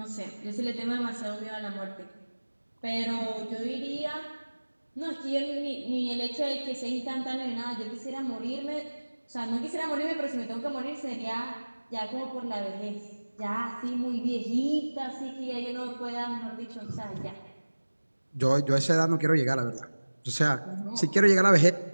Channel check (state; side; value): inverted; both; correlation -1.00